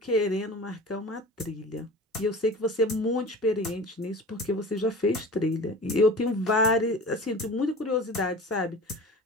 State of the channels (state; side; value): normal; both; correlation 0.38